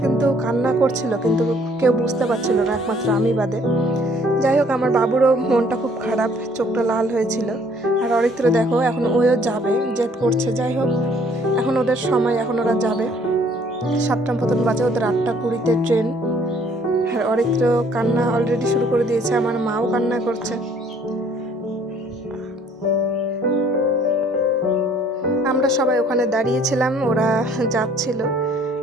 কিন্তু কান্না করছিল, কিন্তু কেউ বুঝতে পারছিল না, একমাত্র আমি বাদে। যাই হোক, আমার বাবুরও মনটা খুব খারাপ, চোখটা লাল হয়েছিল। আর অরিত্র দেখো এখন ওও যাবে, জেদ করছে। যাই হোক, এখন ওদের সময়, এখন ওরা যাবে। 7টা মতন বাজে, ওদের 8:20-তে ট্রেন। আর অরিত্র কান্না অলরেডি শুরু করে দিয়েছে, আমার মাও কান্না করছে। আমরা সবাই ওখানে দাঁড়িয়েছিলাম, ওরা যাচ্ছিল।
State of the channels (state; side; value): normal; both; correlation 0.60